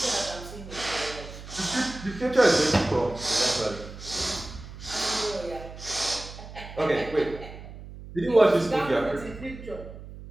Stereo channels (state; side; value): noise; right; hum, 14 dB below the sound